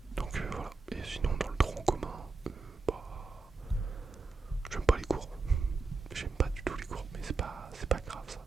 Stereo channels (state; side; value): quieter; left; 4.0 dB